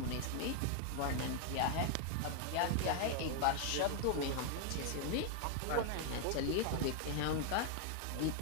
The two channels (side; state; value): both; different; correlation 0.00